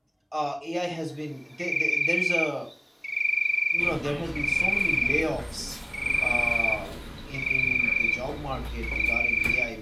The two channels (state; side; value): identical; both; correlation 1.00